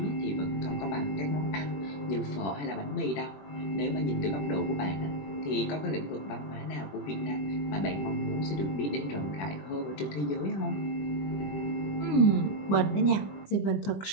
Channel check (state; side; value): late; right; 21 ms